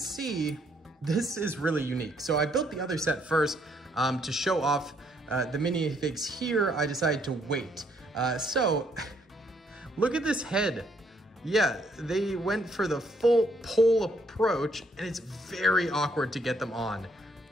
this is really unique. So I built the other set first to show off the minifigs here. I decided to wait. So, look at this head. Yeah, they went for the full pole approach, and it's very awkward to get them on.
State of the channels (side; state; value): both; normal; correlation 0.70